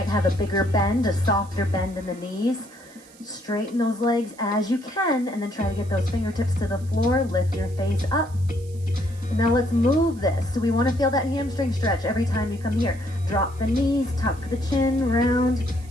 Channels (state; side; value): noise; right; hiss, 24 dB below the sound